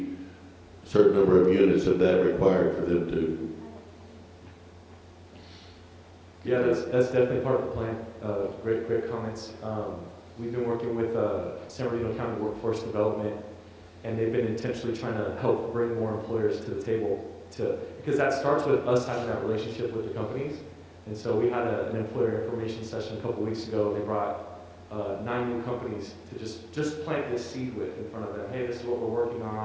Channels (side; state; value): both; identical; correlation 1.00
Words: a certain number of units of that required for them to. Yeah, that's definitely part of the plan. Great comments. We've been working with San Bernardino County Workforce Development, and they've been intentionally trying to help bring more employers to the table because that starts with us having that relationship with the companies. And so we had an employer information session a couple weeks ago. They brought 9 new companies to just plant this seed with in front of them. Hey, this is what we're working